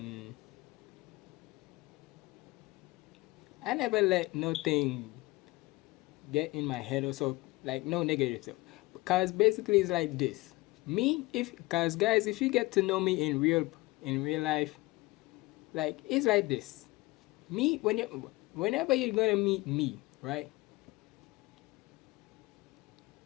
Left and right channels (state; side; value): quieter; right; 21.6 dB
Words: I never let nothing get in my head or so, like no negative stuff. Because basically it's like this. Me, if, cause guys, if you get to know me in real life, like it's like this. Me, whenever you're gonna meet me, right?